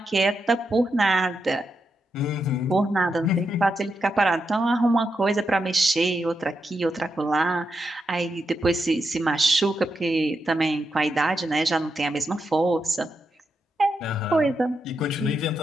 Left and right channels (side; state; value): both; normal; correlation 0.85